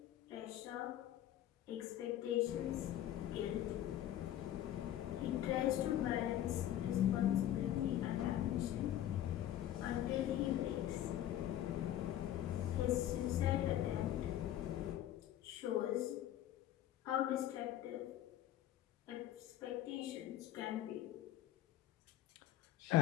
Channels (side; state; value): right; quieter; 12.3 dB